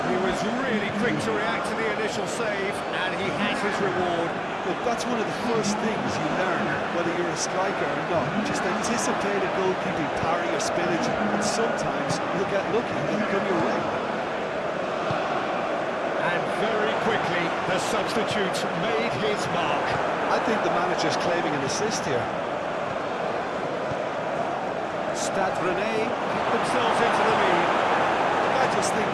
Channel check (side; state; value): both; identical; correlation 1.00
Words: He was really quick to react to the initial save, and he has his reward. Look, that's one of the first things you learn, whether you're a striker or not. Just anticipate a goalkeeping parry or spillage, and sometimes you'll get lucky and it'll come your way. And very quickly, the substitute made his mark. I think the manager's claiming an assist here. Stade Rennais keep themselves into the lead. I just think